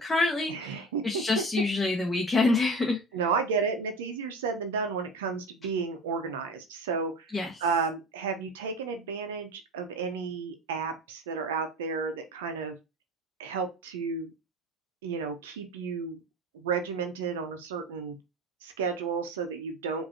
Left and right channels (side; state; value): both; normal; correlation 0.32